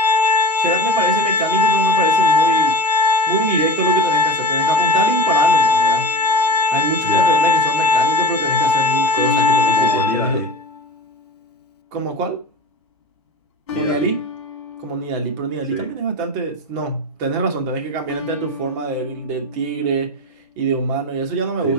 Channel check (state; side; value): normal; both; correlation 0.32